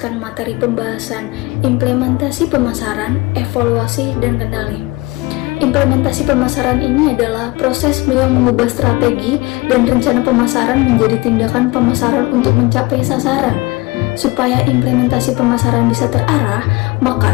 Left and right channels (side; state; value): right; quieter; 22.5 dB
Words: materi pembahasan implementasi pemasaran, evaluasi, dan kendali. Implementasi pemasaran ini adalah proses yang mengubah strategi dan rencana pemasaran menjadi tindakan pemasaran untuk mencapai sasaran. Supaya implementasi pemasaran bisa terarah, maka